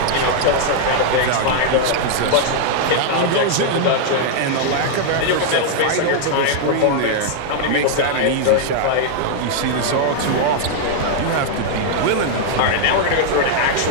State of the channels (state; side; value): different; both; correlation -0.01